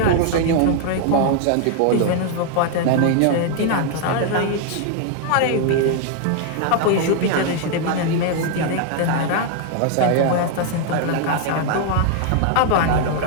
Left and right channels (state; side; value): different; both; correlation 0.00